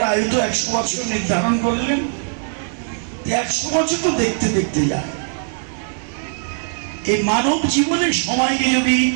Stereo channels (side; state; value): left; silent; 57 dB below the other